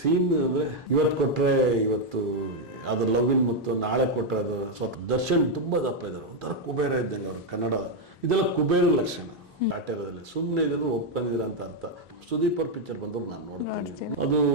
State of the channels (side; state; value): both; normal; correlation 0.02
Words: ಅಂದ್ರೆ ಇವತ್ತು ಕೊಟ್ರೆ ಇವತ್ತು ಅದು ಲವ್ವಿನ್ ಮತ್ತು ನಾಳೆ ಕೊಟ್ರೆ ಅದು ಸ್ವತಃ ದರ್ಶನ್ ತುಂಬಾ ದಪ್ಪ ಇದ್ದಾರೆ. ಒಂಥರ ಕುಬೇರ ಇದ್ದಂಗೆ ಅವರು. ಕನ್ನಡ ಇದೆಲ್ಲ ಕುಬೇರ ಲಕ್ಷಣ. ಕಾಟೇರದಲ್ಲಿ ಸುಮ್ಮನೆ ಇದನ್ನು ಒಪ್ಕೊಂಡಿದ್ದೀರ ಅಂತ ಅರ್ಥ. ಸುದೀಪ್ ಅವ್ರ ಪಿಕ್ಚರ್ ಬಂದ್ರು ನಾನು ನೋಡ್ತೀನಿ. ಅದು